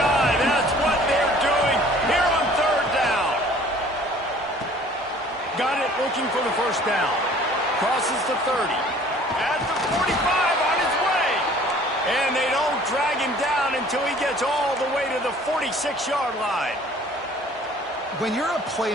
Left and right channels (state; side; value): normal; both; correlation 0.52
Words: That's what they're doing here on third down. Got it, looking for the first down. Crosses the 30. At the 45 on his way. And they don't drag him down until he gets all the way to the 46-yard line. When you're a